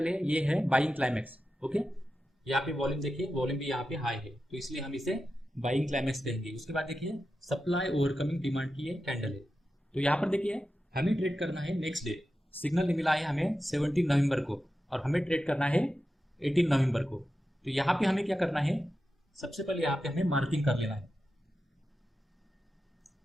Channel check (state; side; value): normal; both; correlation 0.91